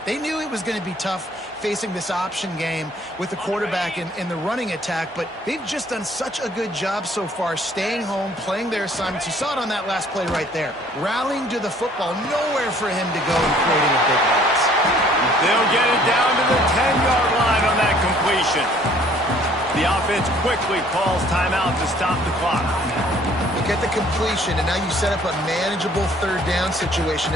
They knew it was going to be tough facing this option game with the quarterback in the running attack, but they've just done such a good job so far staying home, playing their assignments. You saw it on that last play right there. Rallying to the football, nowhere for him to go and creating a big loss. They'll get it down to the 10-yard line on that completion. The offense quickly calls timeout to stop the clock. Look at the completion, and now you set up a manageable third down situation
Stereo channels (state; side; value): normal; both; correlation 0.58